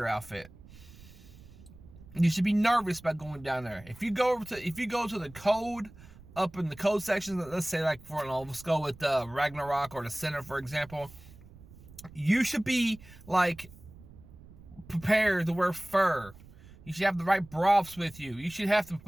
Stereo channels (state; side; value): noise; right; rumble, 20 dB below the sound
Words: outfit. You should be nervous about going down there. If you go to the code, up in the code section, let's say let's go with Ragnarok or the Center, for example, you should be like prepared to wear fur. You should have the right broths with you. You should have to